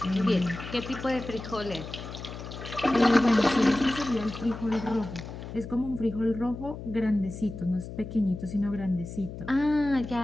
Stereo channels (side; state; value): left; noise; hum, 10 dB below the sound